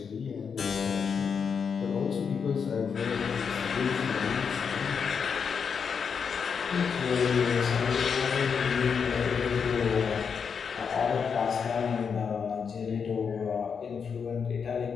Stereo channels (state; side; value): quieter; right; 6.3 dB